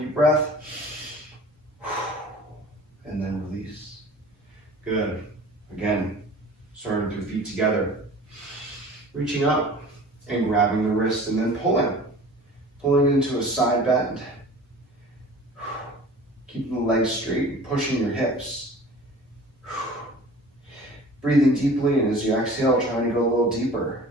breath. And then release. Good. Again, starting with your feet together. Reaching up and grabbing the wrist and then pulling. Pulling into a side bend. Keeping the legs straight, pushing your hips. Breathing deeply, and as you exhale, trying to go a little deeper.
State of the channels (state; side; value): normal; both; correlation 0.43